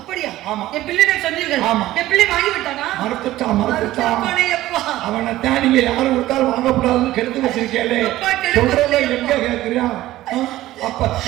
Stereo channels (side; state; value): left; quieter; 15.5 dB